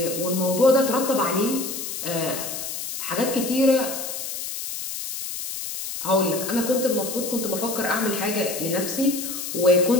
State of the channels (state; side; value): noise; left; hiss, 6 dB below the sound